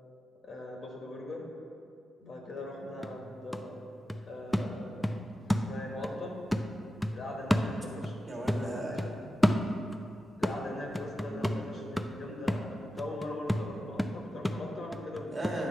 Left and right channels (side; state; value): both; normal; correlation 0.91